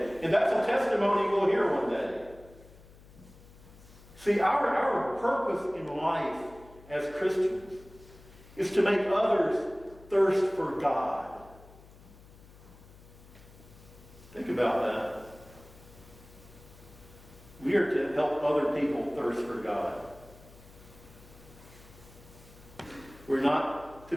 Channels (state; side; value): noise; left; hum, 22 dB below the sound